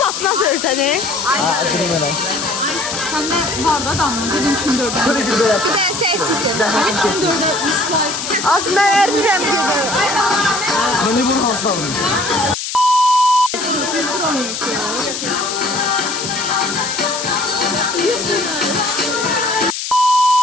sör səni? Ha, durayım hele. Səndə var da adamla, dedim kim 4-ə. Şöyle bir de yap. Bir dənə səksikdir. Kim 4-ə İsmail. Az mən ərdirəm gedir. Beni bunu hastalayın.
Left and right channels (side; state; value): left; noise; hiss, 5 dB below the sound